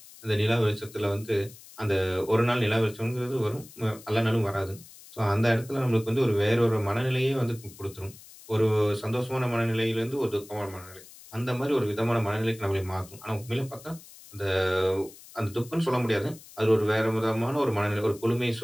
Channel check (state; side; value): noise; left; hiss, 20 dB below the sound